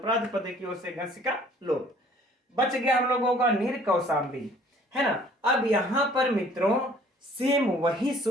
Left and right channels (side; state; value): both; normal; correlation 0.55